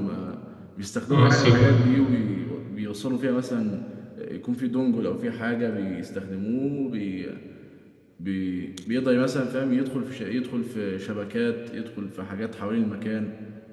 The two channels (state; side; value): identical; both; correlation 1.00